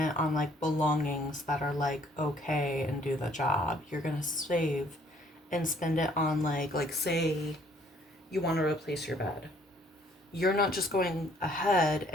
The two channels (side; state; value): both; normal; correlation 0.62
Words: on, like, belongings that are, like, okay and do the job. You're going to save and spend it on, like, say you want to replace your bed. You're not just going ahead